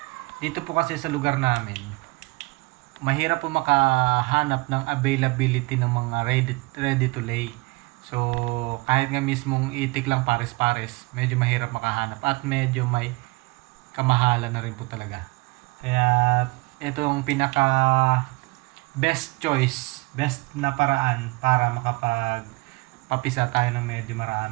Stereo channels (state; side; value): quieter; left; 24.9 dB